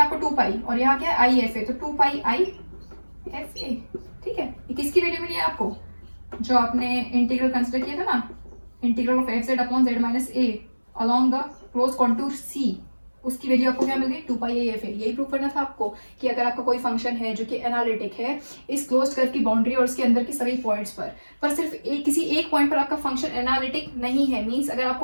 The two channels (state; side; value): inverted; both; correlation -1.00